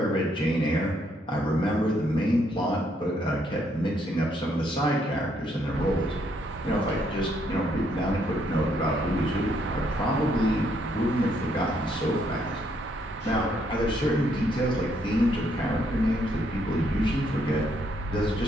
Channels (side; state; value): both; normal; correlation 0.72